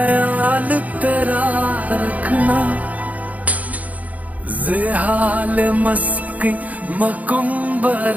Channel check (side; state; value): left; late; 0.074 ms